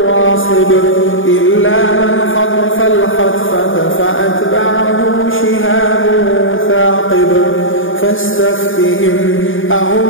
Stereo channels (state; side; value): late; right; 0.58 ms